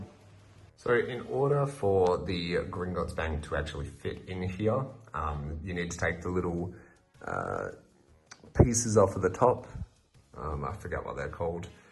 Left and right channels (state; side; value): identical; both; correlation 1.00